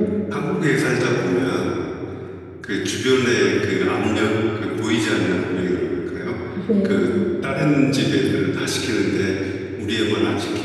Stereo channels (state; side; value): identical; both; correlation 1.00